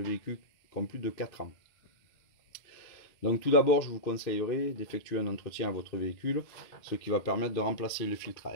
véhicules qui ont plus de 4 ans. Donc tout d'abord, je vous conseillerais d'effectuer un entretien à votre véhicule, ce qui va permettre de remplacer le filtre à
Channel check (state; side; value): late; right; 2.5 ms